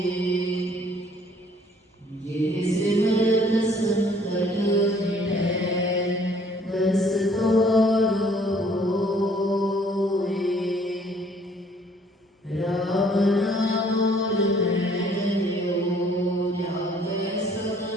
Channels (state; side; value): normal; both; correlation 0.59